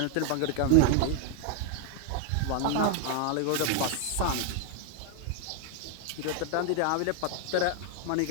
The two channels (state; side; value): different; both; correlation 0.00